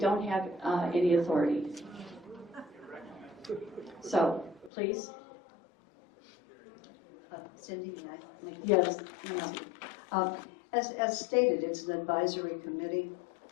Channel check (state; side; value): drops out; right; at 4.7 s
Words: have any authority. So, please. Cindy, may I make a Yes. As stated, it's an advisory committee.